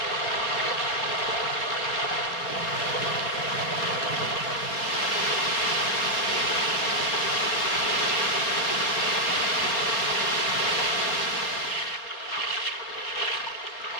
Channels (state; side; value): late; right; 4.3 ms